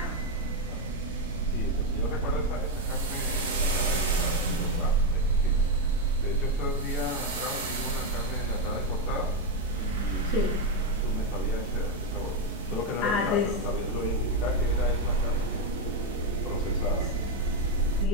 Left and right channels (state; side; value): normal; both; correlation 0.06